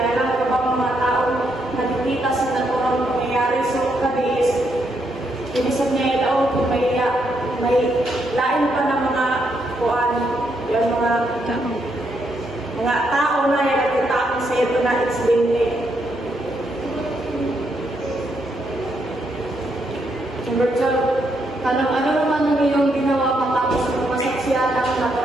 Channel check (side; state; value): both; normal; correlation 0.77